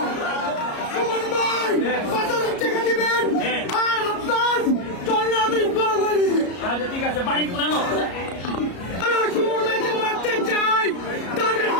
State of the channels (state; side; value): late; right; 33 ms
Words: সুমন ভাই 5000 টাকা দিবেন আর আপনার চলে আমি বাঙালি। আচ্ছা ঠিক আছে, বাড়ি পুরানো সুমন ভাইকে মারতে চাই, তাদের